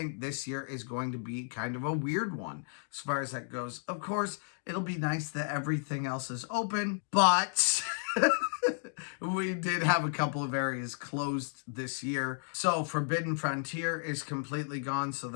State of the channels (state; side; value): silent; right; digital silence